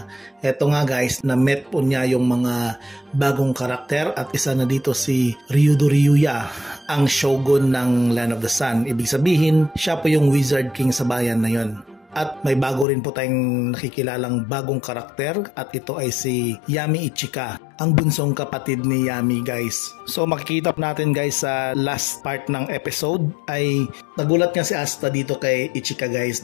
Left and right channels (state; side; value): drops out; right; at 12.9 s